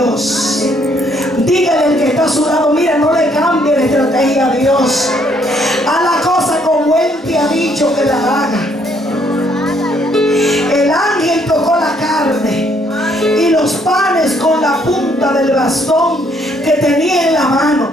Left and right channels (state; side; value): normal; both; correlation 0.68